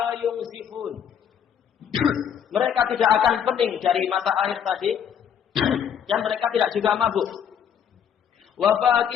yunzifun. Mereka tidak akan pening dari mata air tadi dan mereka tidak juga mabuk. Wa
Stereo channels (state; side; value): quieter; right; 8.4 dB